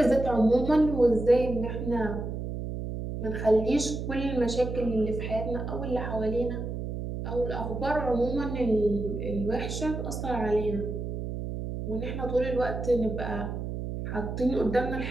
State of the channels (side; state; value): right; noise; hum, 5 dB below the sound